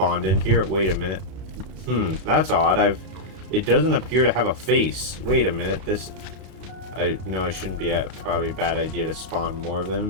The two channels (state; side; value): late; left; 32 ms